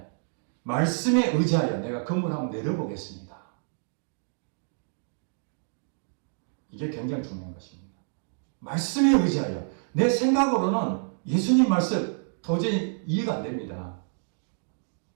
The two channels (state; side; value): silent; left; digital silence